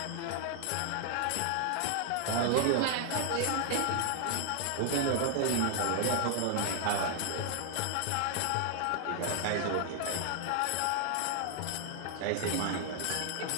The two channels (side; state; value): both; different; correlation 0.00